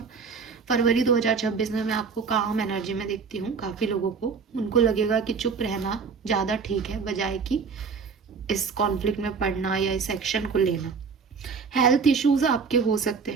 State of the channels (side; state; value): left; quieter; 5.4 dB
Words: फरवरी 2026 में मैं आपको काम एनर्जी में देखती हूँ। काफ़ी लोगों को उनको लगेगा कि चुप रहना ज़्यादा ठीक है बजाय कि इस कॉन्फ्लिक्ट में पड़ना या इस एक्शन को लेना। हेल्थ इश्यूज आपके हो सकते